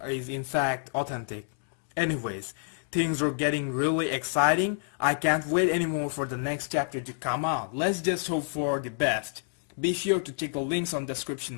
is in fact authentic. Anyways, things are getting really exciting. I can't wait anymore for the next chapter to come out. Let's just hope for the best. Be sure to check the links on the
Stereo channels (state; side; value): silent; right; digital silence